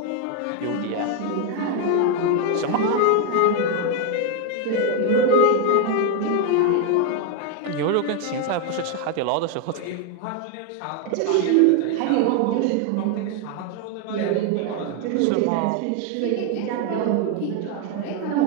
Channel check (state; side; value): different; both; correlation 0.01